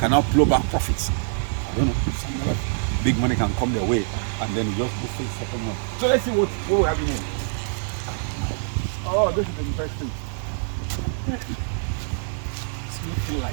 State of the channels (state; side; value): silent; left; digital silence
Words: now plow back profits. I don't know, some other big money can come their way, and then you just go face second one. So let's see what we have in here. Oh, this is interesting. It's looking